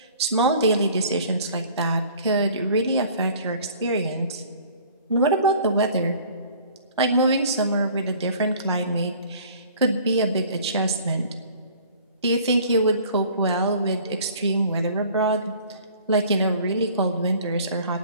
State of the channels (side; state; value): both; inverted; correlation -0.51